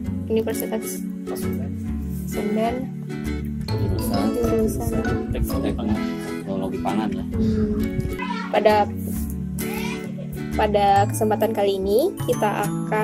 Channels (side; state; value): both; identical; correlation 1.00